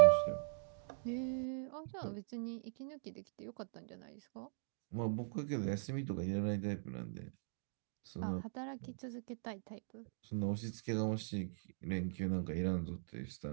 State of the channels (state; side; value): silent; left; digital silence